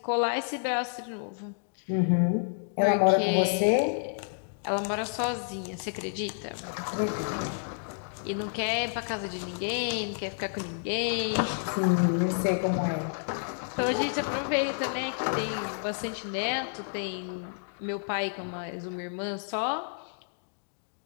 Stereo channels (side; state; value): right; silent; digital silence